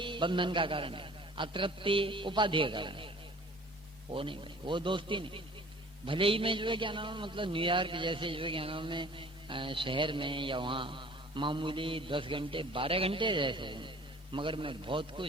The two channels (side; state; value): both; normal; correlation 0.49